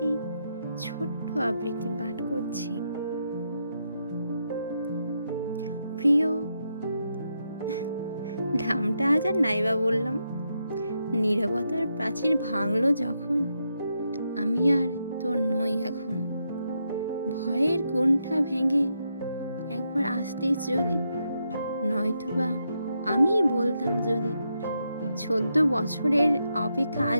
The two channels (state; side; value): inverted; both; correlation -0.82